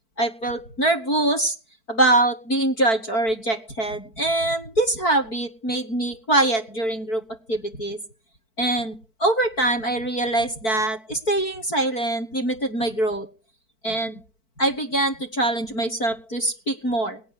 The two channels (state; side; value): late; right; 4.5 ms